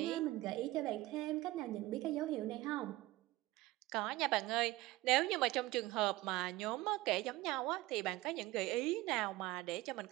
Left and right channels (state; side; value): quieter; left; 18.5 dB